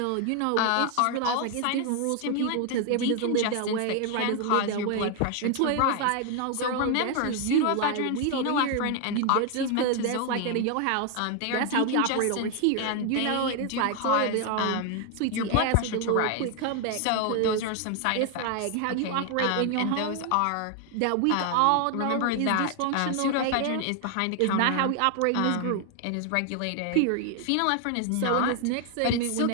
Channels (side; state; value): both; different; correlation 0.00